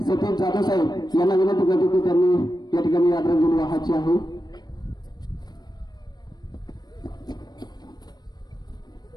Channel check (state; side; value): late; right; 0.20 ms